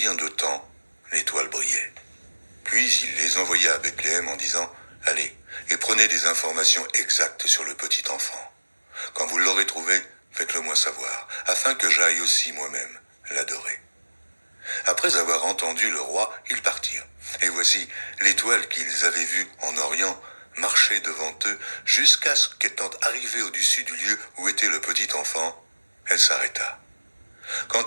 de temps l'étoile brillait. Puis il les envoya à Bethléem en disant : « Allez, et prenez des informations exactes sur le petit enfant. Quand vous l'aurez trouvé, faites-le moi savoir, afin que j'aille aussi moi-même l'adorer. » Après avoir entendu le roi, ils partirent. Et voici, l'étoile qu'ils avaient vue en Orient marchait devant eux jusqu'à ce qu'étant arrivée au-dessus du lieu où était le petit enfant, elle s'arrêta.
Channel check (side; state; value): both; inverted; correlation -1.00